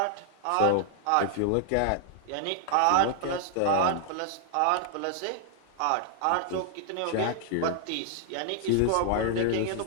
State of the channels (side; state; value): both; different; correlation -0.01